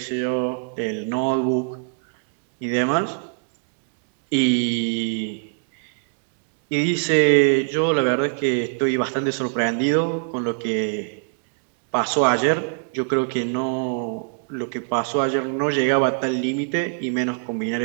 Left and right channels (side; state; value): left; silent; digital silence